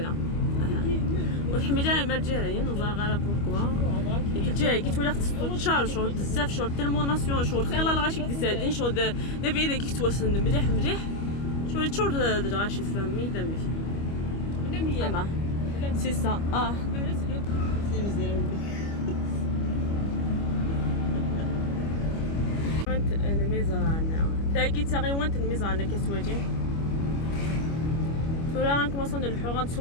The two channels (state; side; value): late; right; 25 ms